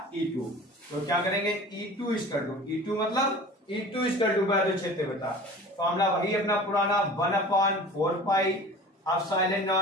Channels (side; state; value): both; normal; correlation 0.40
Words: E2। तो क्या करेंगे, E2 इक्वल टू, E2 मतलब E2 इक्वल टू वैद्युत क्षेत्र तीव्रता। फॉर्मूला वही अपना पुराना 1/4 pi epsilon